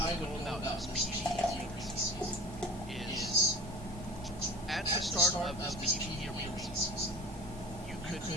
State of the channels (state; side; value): normal; both; correlation 0.39